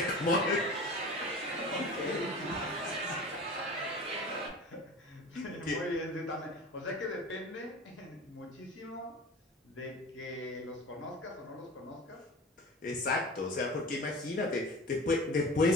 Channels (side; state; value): both; normal; correlation 0.36